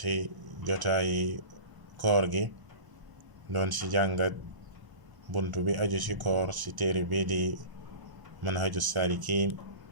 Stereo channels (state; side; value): late; left; 1.0 ms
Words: jotaayi koor gi, doon si jàngat bunt bi aju si koor si téere bi di manhaju salikin